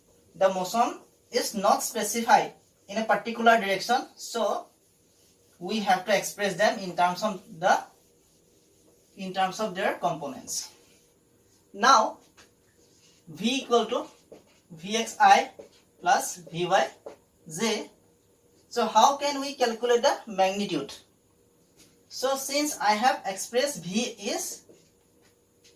motion is not specified in a particular direction. So we have to express them in terms of their components. Now v equal to vxi plus vyj. So how can we calculate the magnitude? So since I have expressed v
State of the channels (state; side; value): identical; both; correlation 1.00